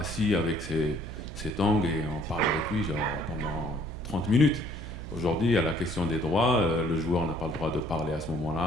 avec ses tongs, et on parle avec lui genre, pendant 30 minutes. Aujourd'hui, il y a la question des droits. Le joueur n'a pas le droit de parler à ce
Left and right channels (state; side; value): noise; right; hum, 10 dB below the sound